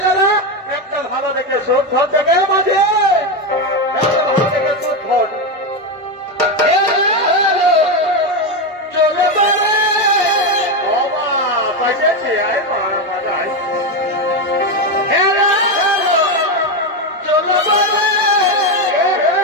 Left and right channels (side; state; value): both; normal; correlation 0.11